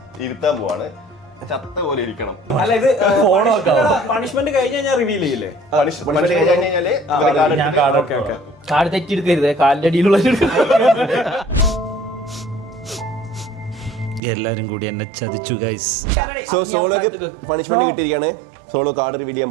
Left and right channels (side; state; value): left; drops out; at 14.2 s